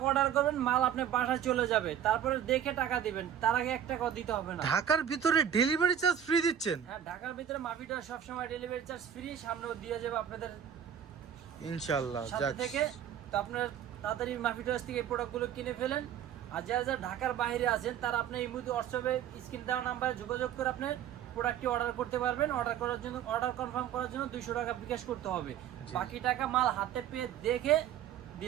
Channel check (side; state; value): left; quieter; 9.5 dB